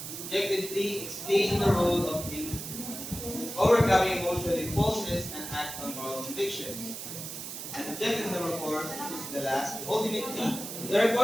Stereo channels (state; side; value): noise; right; hiss, 8 dB below the sound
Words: Objective 3, explaining the role of overcoming emotional impulses and act on moral convictions. And objective number 4 is the last. Ultimately, the